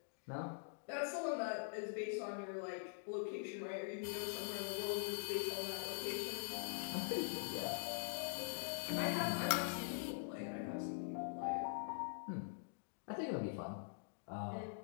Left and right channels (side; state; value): right; silent; digital silence